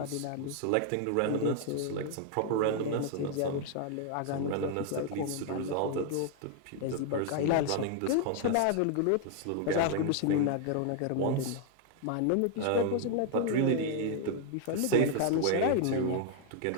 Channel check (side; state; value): both; different; correlation 0.00